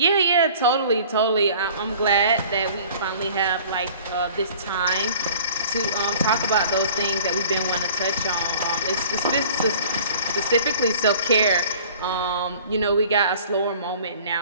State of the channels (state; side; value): inverted; both; correlation -0.48